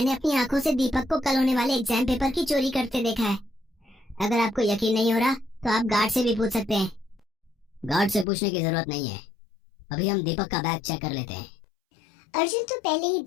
अपनी आंखों से दीपक को कल होने वाले एग्जाम पेपर की चोरी करते देखा है। अगर आपको यकीन नहीं हो रहा तो आप गार्ड से भी पूछ सकते हैं। गार्ड से पूछने की जरूरत नहीं है, अभी हम दीपक का बैग चेक कर लेते हैं। अर्जुन तो पहले ही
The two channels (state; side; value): drops out; right; at 8.2 s